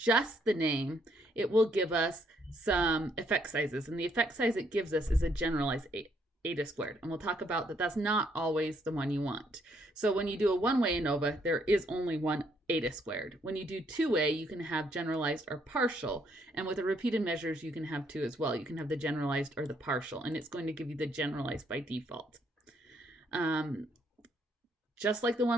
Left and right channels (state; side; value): normal; both; correlation 0.70